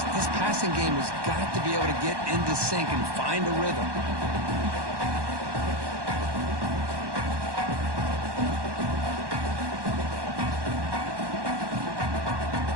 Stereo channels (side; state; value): left; late; 1.1 ms